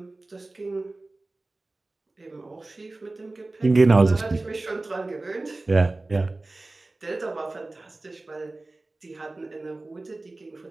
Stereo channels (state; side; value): quieter; left; 3.1 dB